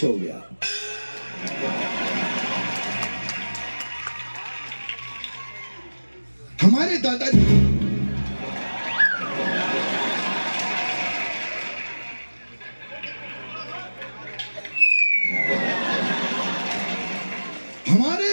हो गया। हमारे दादाजी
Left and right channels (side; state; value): both; inverted; correlation -1.00